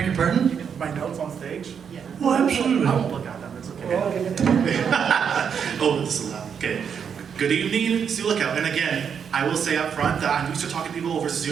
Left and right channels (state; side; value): quieter; left; 7.3 dB